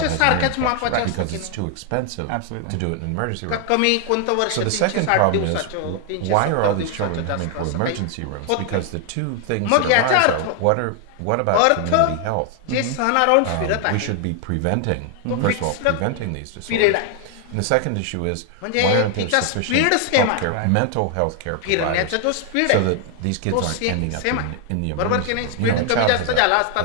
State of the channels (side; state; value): both; different; correlation 0.00